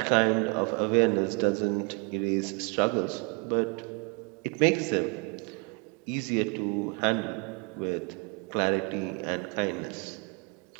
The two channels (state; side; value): quieter; left; 33.3 dB